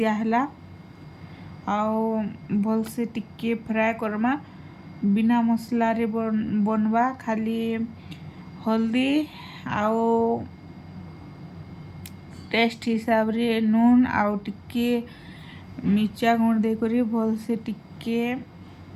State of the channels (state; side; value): identical; both; correlation 1.00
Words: आउ भल से टिके फ्राए करमा बिना मसला रे बनवा खाली हल्दी आउ टेस्ट हिसाब रे नून आउ टिके मिर्चा गुण दे करी भल से टिके